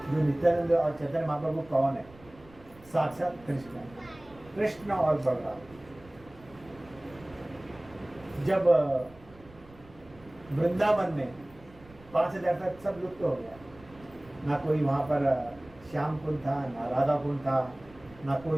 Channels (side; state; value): right; noise; rumble, 23 dB below the sound